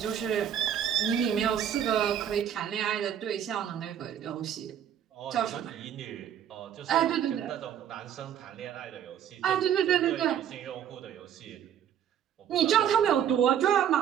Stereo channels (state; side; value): quieter; left; 9.5 dB